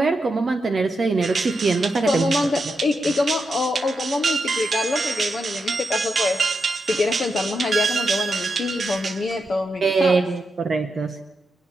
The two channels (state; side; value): normal; both; correlation 0.85